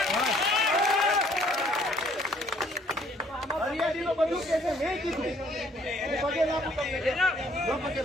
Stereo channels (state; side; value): normal; both; correlation 0.62